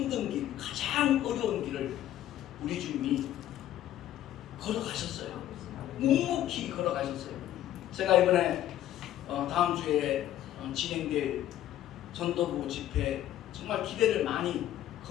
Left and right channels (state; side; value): quieter; right; 12.5 dB